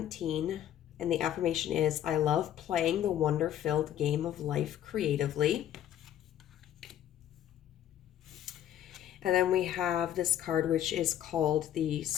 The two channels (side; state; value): right; quieter; 11.2 dB